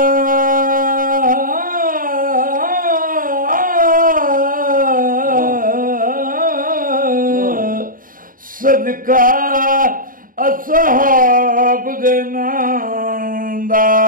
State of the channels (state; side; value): late; left; 0.40 ms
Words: اصحاب دے نام دا